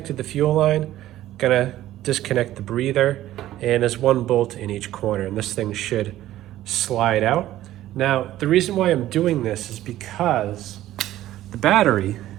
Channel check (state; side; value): quieter; left; 14.0 dB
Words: the fuel line, gonna disconnect the breather, and there's one bolt in each corner, and this thing should slide out. Now, the reason why I'm doing this is because the battery